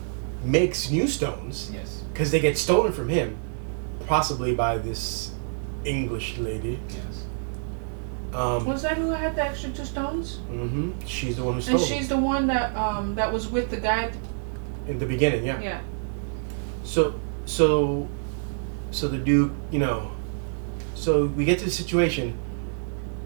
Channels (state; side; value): silent; left; digital silence